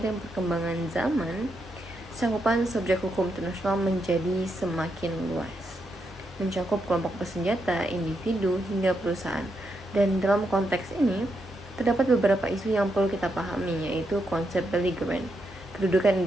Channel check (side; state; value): both; normal; correlation 0.82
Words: perkembangan zaman, cakupan subjek hukum internasional menjadi semakin luas, mencakup kelompok bersenjata, individu, hingga perusahaan. Dan dalam konteks ini, terdapat beberapa isu yang perlu kita pahami, yaitu konsep belligerent, kedudukan